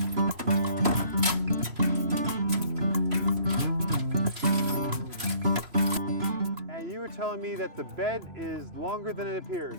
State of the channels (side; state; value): left; late; 2.9 ms